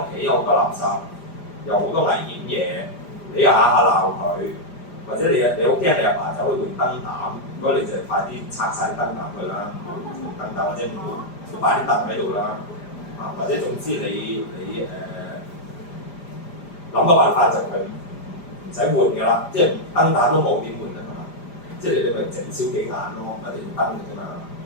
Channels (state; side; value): late; right; 5.0 ms